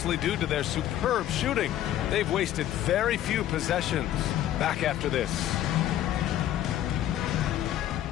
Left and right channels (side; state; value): right; quieter; 12.2 dB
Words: due to their superb shooting. They've wasted very few possessions. Back after this.